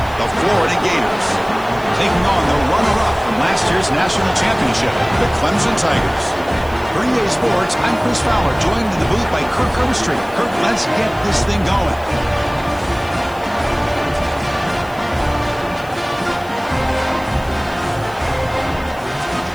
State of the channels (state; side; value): noise; left; hiss, 24 dB below the sound